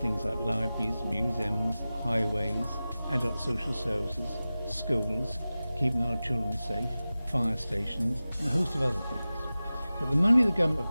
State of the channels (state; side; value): inverted; both; correlation -0.96